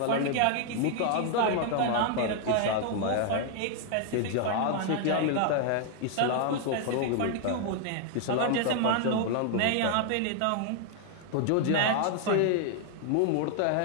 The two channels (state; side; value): different; both; correlation 0.00